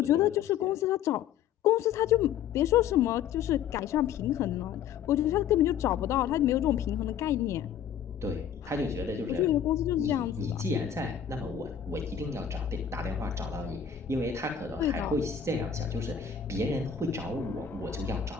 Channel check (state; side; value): quieter; right; 8.5 dB